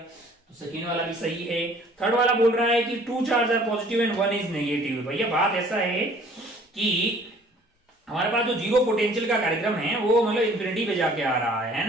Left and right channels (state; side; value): normal; both; correlation 0.55